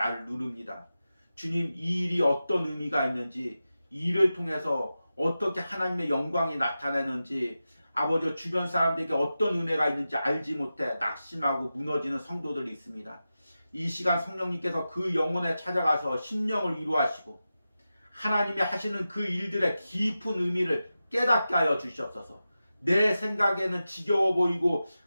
누릅니다. 주님, 이 일이 어떤 의미가 있는지, 이 일을 통해서 어떻게 하나님의 영광이 나타나는지, 아버지 주변 사람들에게 어떤 은혜가 있는지 알지 못해 낙심하고 무너지는 성도들이 있습니다. 이 시간 성령님께서 그 영혼에 찾아가서 심령을 위로하시고 하나님이 하시는 그 일들의 깊은 의미를 깨닫게 하여 주시옵소서. 내 생각에는 지겨워 보이고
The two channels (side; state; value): both; inverted; correlation -0.93